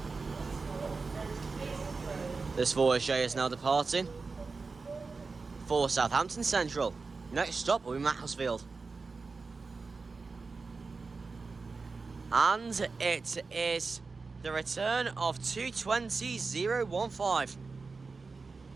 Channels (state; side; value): quieter; left; 4.3 dB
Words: This voyager is now departing for Southampton Central. Next stop will be Macclesfield. And it is the return of 220.015.